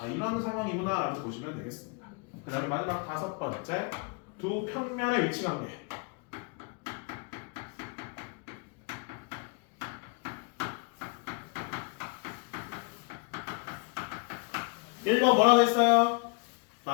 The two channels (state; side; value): quieter; right; 31.9 dB